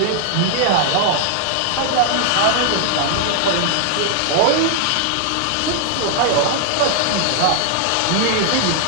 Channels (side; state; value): both; different; correlation -0.01